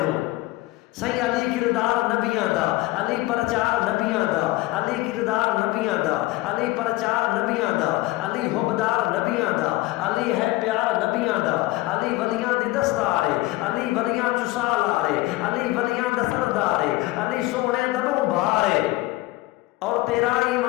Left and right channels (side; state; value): right; quieter; 18.9 dB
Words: صحیح علی کردار نبیاں دا علی پرچار نبیاں دا علی کردار نبیاں دا علی پرچار نبیاں دا علی حبدار نبیاں دا علی ہے پیار نبیاں دا علی ولیاں دی دستارے علی ولیاں چسالارے علی ولیاں دا سردارے علی سونے دبوں بھارے اور تیرا